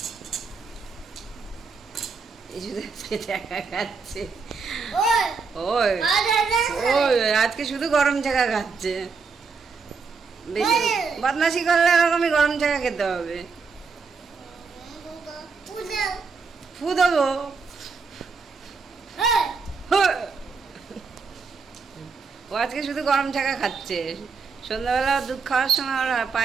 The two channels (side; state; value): left; quieter; 5.0 dB